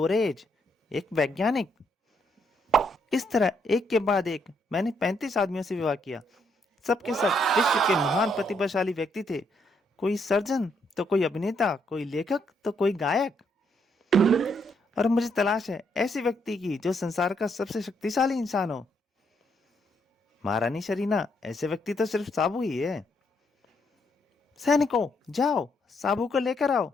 एक वैज्ञानिक। इस तरह एक के बाद एक मैंने 35 आदमियों से विवाह किया। सबके सब विश्व के महान प्रतिभाशाली व्यक्ति थे। कोई सर्जन तो कोई अभिनेता, कोई लेखक तो कोई गायक। और मुझे तलाश है ऐसे व्यक्ति की जो संसार का सबसे शक्तिशाली इंसान हो। महारानी शरीना, ऐसे व्यक्ति तो सिर्फ साबू ही है। सैनिकों, जाओ साबू को लेकर आओ।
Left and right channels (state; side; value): normal; both; correlation 0.74